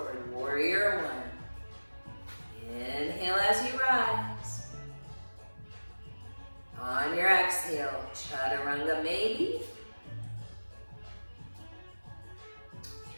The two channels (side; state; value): both; inverted; correlation -1.00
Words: warrior 1. Inhale as you rise. On your exhale, chaturanga maybe.